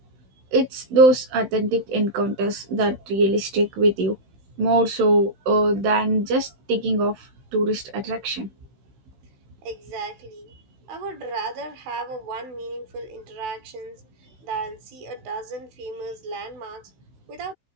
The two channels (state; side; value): late; left; 15 ms